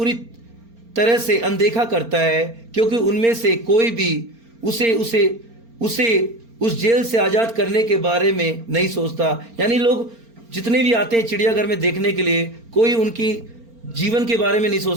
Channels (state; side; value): late; left; 4.4 ms